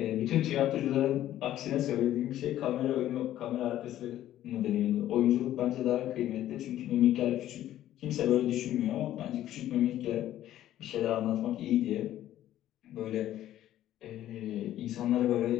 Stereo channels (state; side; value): quieter; right; 12.8 dB